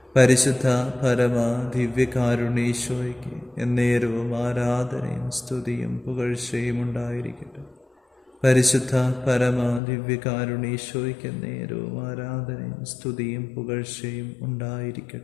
പരിശുദ്ധ പരമ ദിവ്യകാരുണീശോയ്ക്ക് എന്നേരവും ആരാധനയും സ്തുതിയും പുകഴ്ചയും ഉണ്ടായിരിക്കട്ടെ. പരിശുദ്ധ പരമ ദിവ്യകാരുണീശോയ്ക്ക് എന്നേരവും ആരാധനയും സ്തുതിയും പുകഴ്ചയും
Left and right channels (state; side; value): drops out; right; at 9.8 s